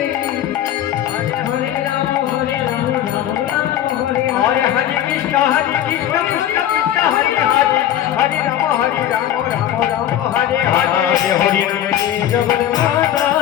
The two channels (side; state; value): right; quieter; 11.4 dB